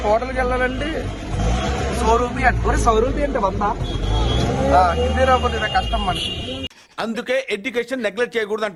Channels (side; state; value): both; identical; correlation 1.00